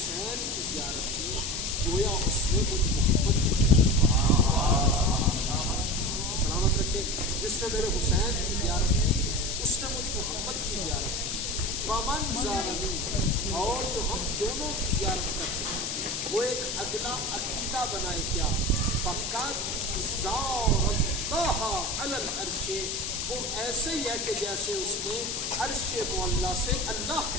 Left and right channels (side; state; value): left; noise; hiss, 3 dB below the sound